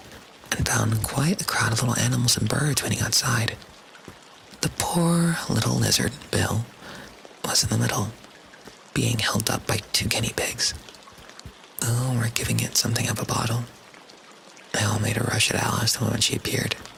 and found quite a crowd of little animals and birds waiting outside. The poor little lizard, Bill, was in the middle, being held up by 2 guinea pigs. Oh, we're giving it something of a bottle. They all made a rush at Alice the moment she appeared,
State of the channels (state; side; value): identical; both; correlation 1.00